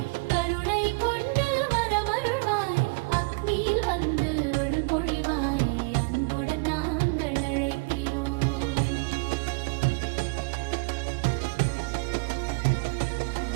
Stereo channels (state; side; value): quieter; left; 31.3 dB